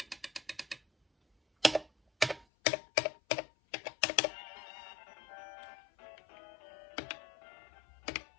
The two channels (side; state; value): right; drops out; at 2.5 s